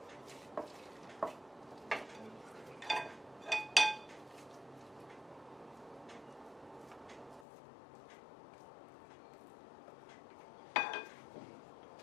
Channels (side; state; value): right; drops out; at 7.5 s